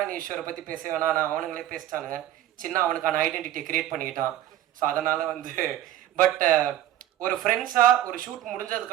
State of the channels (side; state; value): left; quieter; 12.8 dB